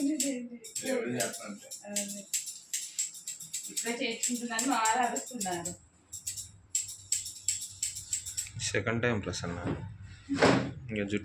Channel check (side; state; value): both; identical; correlation 1.00